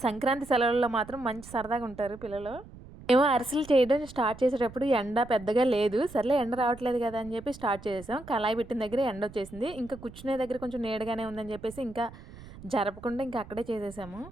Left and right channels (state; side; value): noise; right; rumble, 17 dB below the sound